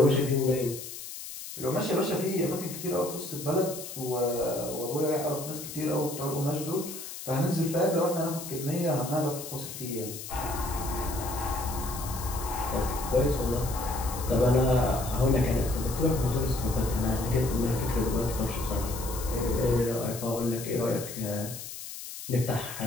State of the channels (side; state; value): left; noise; hiss, 10 dB below the sound